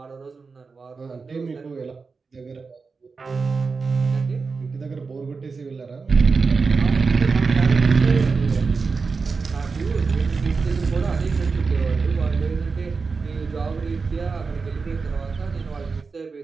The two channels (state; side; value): quieter; left; 4.6 dB